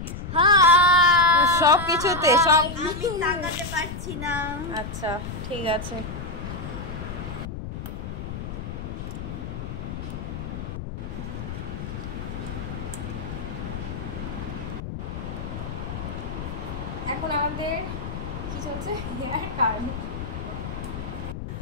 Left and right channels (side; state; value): left; noise; rumble, 7 dB below the sound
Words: high. সব কিছুতে সব আমি তাকাতে পারছি না। আচ্ছা ঠিক আছে। এখন আমাদের কি চলছে? Haircut.